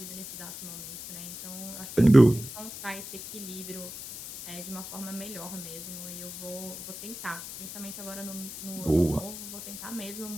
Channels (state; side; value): noise; left; hiss, 10 dB below the sound